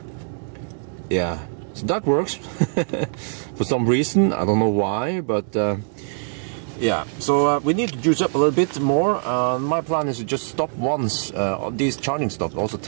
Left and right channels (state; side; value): silent; left; digital silence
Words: Yeah, so that works for some reason. I don't know why, but yeah. So we need to juice up a little bit more. My plan is to just stop once. These charging stops also